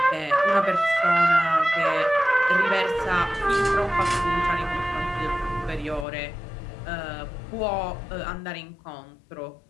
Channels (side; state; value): right; drops out; at 6.1 s